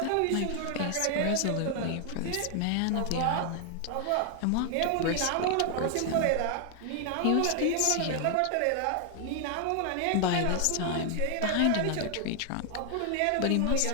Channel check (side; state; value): both; different; correlation 0.00